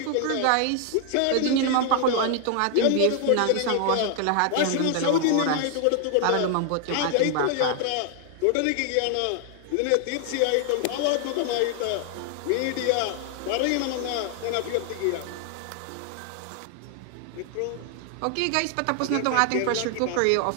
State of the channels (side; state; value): both; different; correlation 0.00